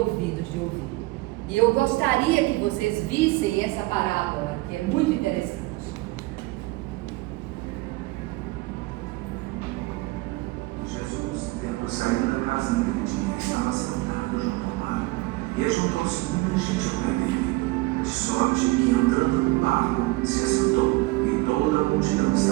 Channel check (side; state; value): left; quieter; 21.4 dB